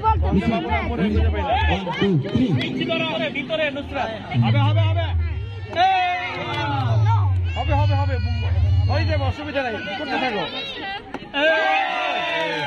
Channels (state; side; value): identical; both; correlation 1.00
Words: ভিতরে নুসরাত হবে হবে হবে হবে হবে হবে হয়ে যাবে, অসুবিধা নাই, করতে থাকো।